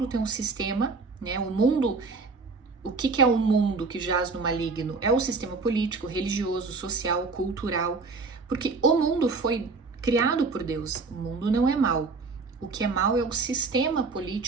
tem um sistema, né? O mundo, o que é o mundo que jaz no maligno? É o sistema político, religioso, social, cultural, porque o mundo foi criado por Deus. O mundo não é mau. O que é mau é o sistema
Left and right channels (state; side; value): quieter; left; 4.2 dB